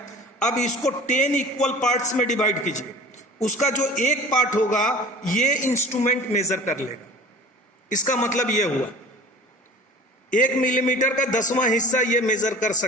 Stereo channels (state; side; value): normal; both; correlation 0.41